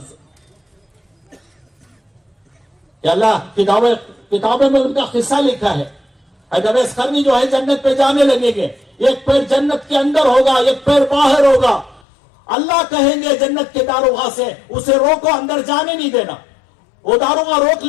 سے. کہ اللہ کتابوں میں ان کا قصہ لکھا ہے. حضرت اویس قرنی جو ہے جنت پہ جانے لگیں گے، ایک پیر جنت کے اندر ہوگا، ایک پیر باہر ہوگا. اللہ کہیں گے جنت کے داروغہ سے اسے روکو، اندر جانے نہیں دینا. وہ داروغہ روک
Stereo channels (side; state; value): right; drops out; at 12.0 s